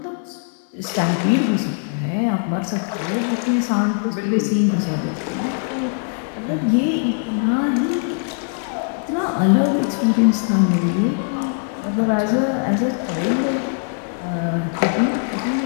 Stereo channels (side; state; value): right; silent; 56 dB below the other